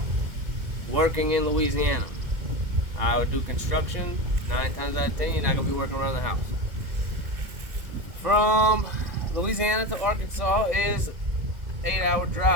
working in Louisiana. I would do construction. 9 times out of 10, you're not gonna be working around the house. From Louisiana to Arkansas is 8-hour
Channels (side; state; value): left; late; 2.0 ms